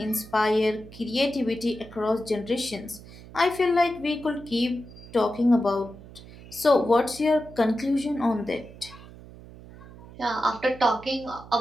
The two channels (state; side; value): noise; right; hum, 18 dB below the sound